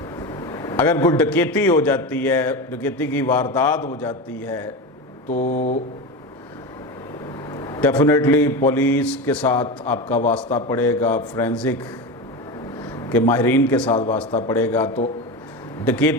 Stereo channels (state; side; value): normal; both; correlation 0.22